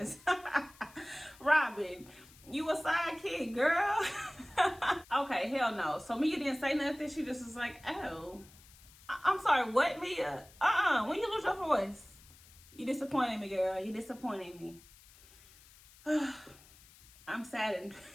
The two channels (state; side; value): noise; left; hiss, 24 dB below the sound